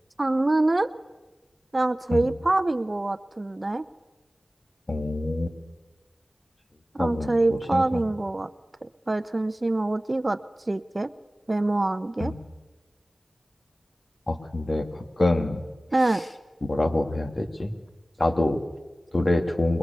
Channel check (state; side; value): normal; both; correlation 0.97